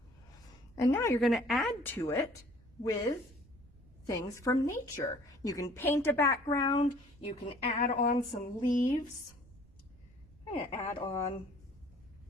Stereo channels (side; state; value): right; noise; rumble, 25 dB below the sound